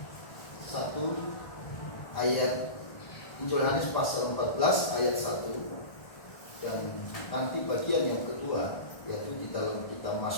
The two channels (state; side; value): late; right; 1.5 ms